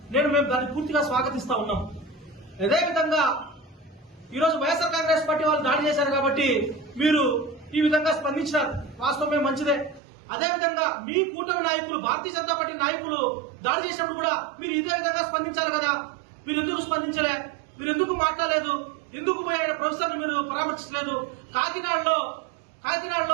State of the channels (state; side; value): drops out; left; at 10.0 s